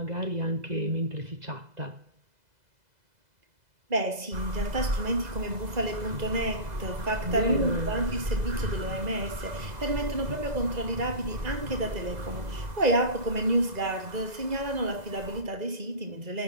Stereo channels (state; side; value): late; left; 2.0 ms